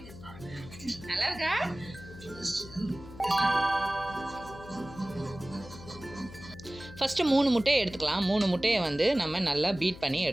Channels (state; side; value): noise; left; hum, 16 dB below the sound